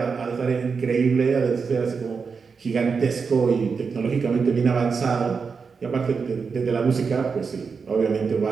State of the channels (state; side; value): quieter; left; 5.4 dB